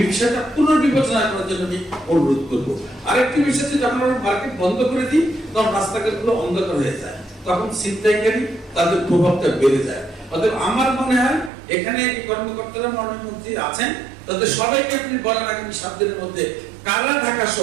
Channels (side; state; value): left; drops out; at 11.5 s